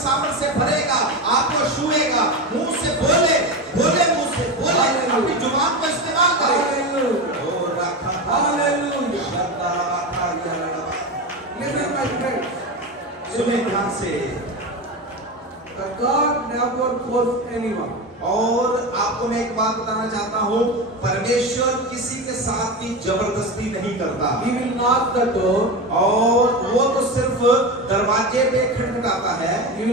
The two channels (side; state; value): both; normal; correlation 0.21